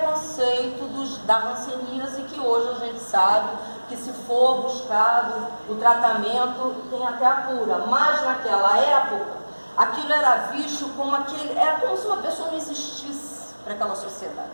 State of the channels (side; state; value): both; inverted; correlation -1.00